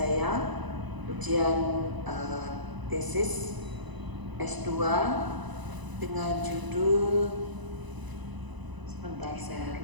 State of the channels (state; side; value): late; left; 1.0 ms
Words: ujian tesis S2 dengan judul, sebentar saya